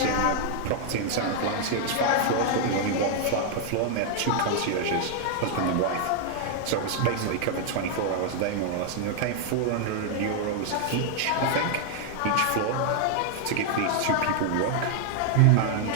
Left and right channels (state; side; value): different; both; correlation 0.00